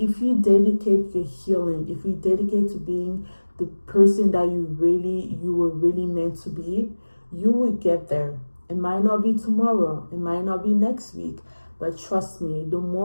you dedicate your healing, if you dedicate to being the person that you were really meant to be, you will get there. It might not be tomorrow, it might not be next week, but trust me, the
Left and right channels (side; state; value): both; inverted; correlation -1.00